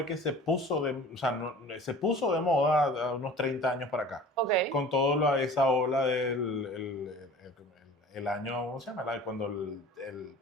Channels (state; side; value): normal; both; correlation 0.43